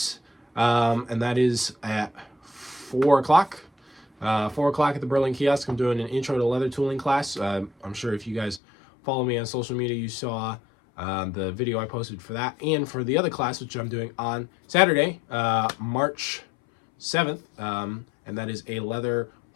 and that is at 4 o'clock. 4 o'clock at the Berlin Kiosk. I'm doing an intro to leather tooling class. I'm sure if you guys follow me on social media, you saw the video I posted for that, and for the other class, which I'm doing on Saturday, March 7th, and that is a leather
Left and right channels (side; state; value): right; drops out; at 8.6 s